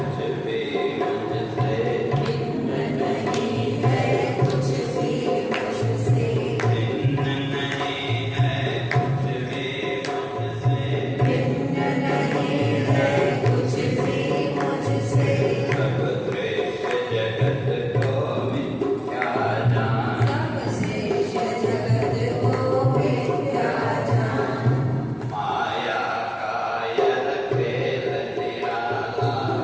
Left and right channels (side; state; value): both; identical; correlation 1.00